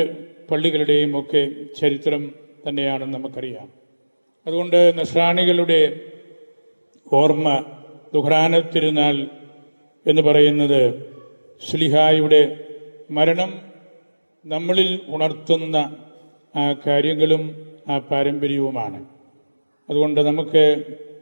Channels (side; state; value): both; inverted; correlation -1.00